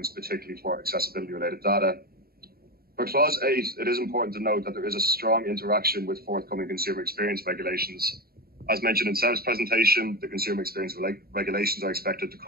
particularly for accessibility related data. For clause 8, it is important to note that there is a strong interaction with forthcoming consumer experience regulations. As mentioned in Seb's presentation, the consumer experience regulations are expected to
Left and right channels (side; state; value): left; late; 0.44 ms